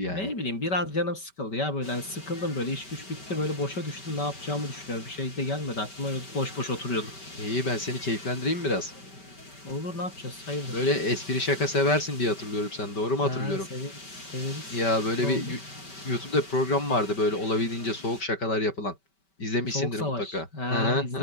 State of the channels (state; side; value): late; right; 5.2 ms